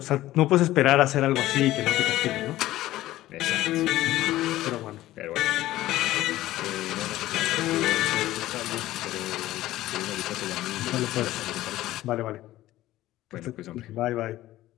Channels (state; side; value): quieter; right; 15.5 dB